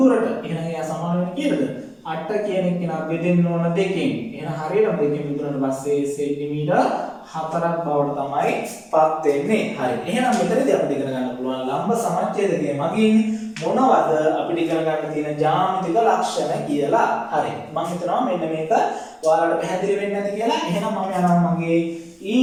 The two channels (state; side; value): identical; both; correlation 1.00